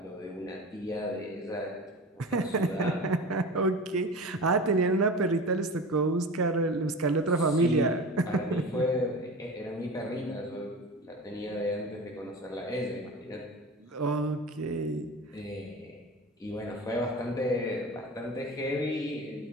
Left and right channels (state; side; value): normal; both; correlation 0.32